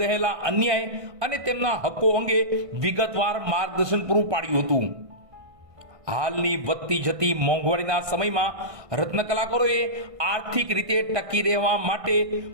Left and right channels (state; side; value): late; left; 1.5 ms